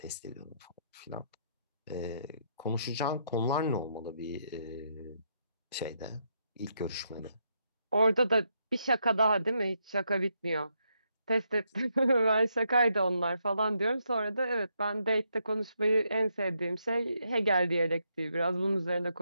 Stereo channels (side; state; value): both; inverted; correlation -0.78